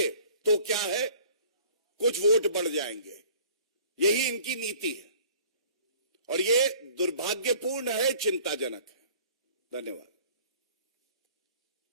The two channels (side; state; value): both; inverted; correlation -0.50